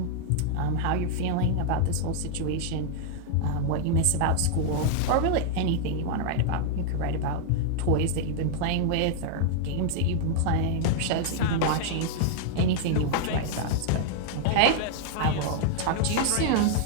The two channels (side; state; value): both; different; correlation 0.00